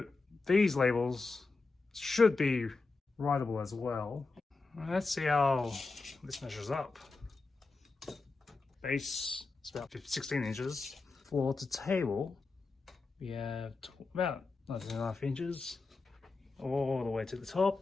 these labels should be writable as well. Let's see how this measures up. Base is about 16 inches. Floor to table, we have about 19.5 inches. All the way to the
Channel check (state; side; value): quieter; right; 3.9 dB